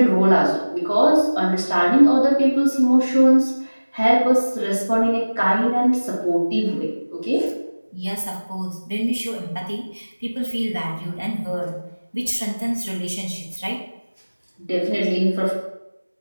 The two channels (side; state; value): both; inverted; correlation -1.00